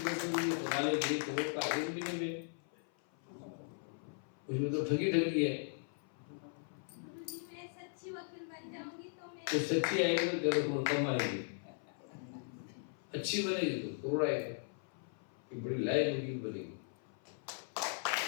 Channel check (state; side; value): silent; right; 52 dB below the other